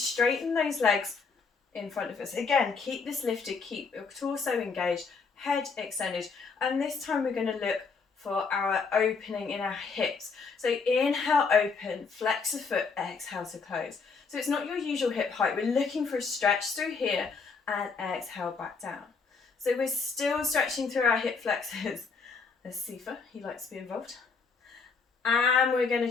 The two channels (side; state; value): right; quieter; 4.9 dB